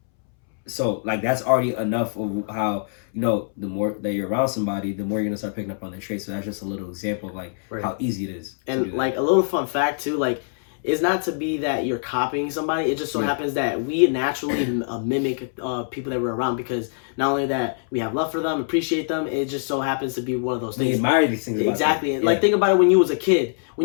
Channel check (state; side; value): silent; right; 63 dB below the other